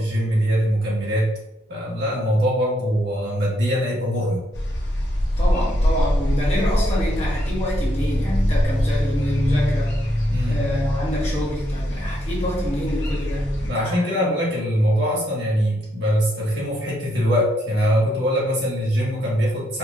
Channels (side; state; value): both; normal; correlation 0.76